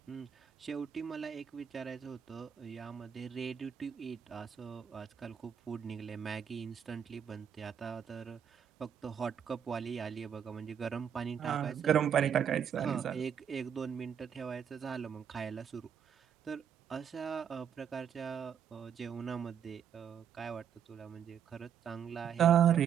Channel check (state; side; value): quieter; left; 8.3 dB